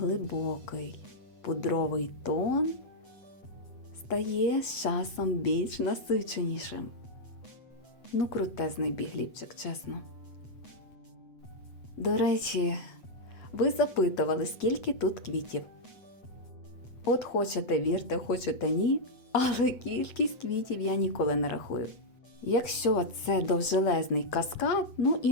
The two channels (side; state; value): right; late; 8.1 ms